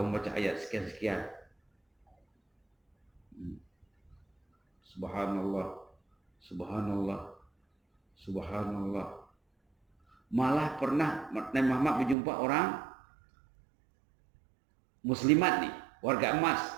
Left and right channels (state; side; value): drops out; left; at 12.2 s